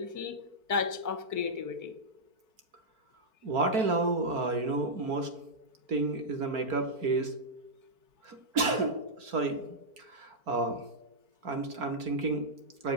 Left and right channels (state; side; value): late; left; 4.5 ms